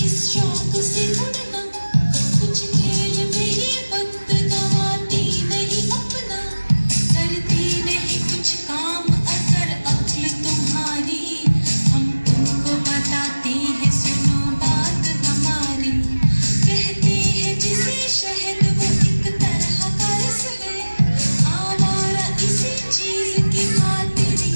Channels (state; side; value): inverted; both; correlation -1.00